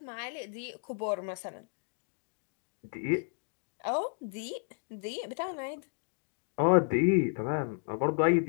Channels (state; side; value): silent; right; digital silence